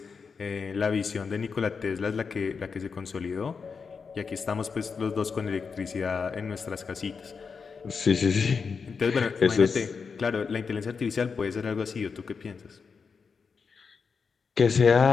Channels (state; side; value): quieter; right; 5.5 dB